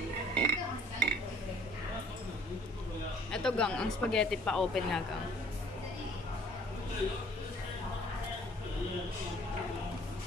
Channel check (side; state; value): both; normal; correlation 0.56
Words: Ito, Gang. Ang spaghetti pa open nga, Gang.